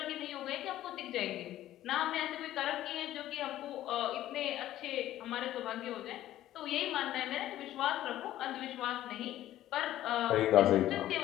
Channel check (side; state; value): right; quieter; 13.6 dB